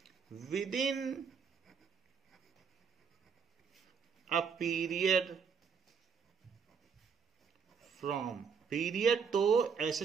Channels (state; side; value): quieter; left; 6.1 dB